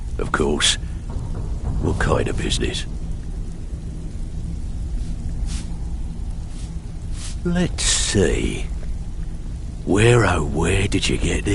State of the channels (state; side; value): identical; both; correlation 1.00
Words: of course. What kind of business? Let's see. Where, oh, where did you get